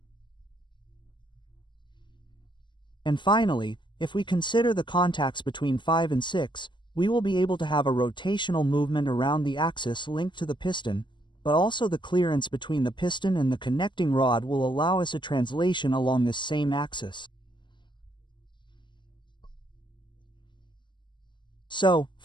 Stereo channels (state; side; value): late; right; 0.22 ms